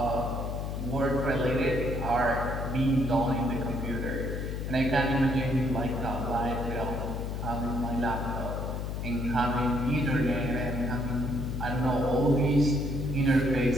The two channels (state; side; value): noise; left; hum, 3 dB below the sound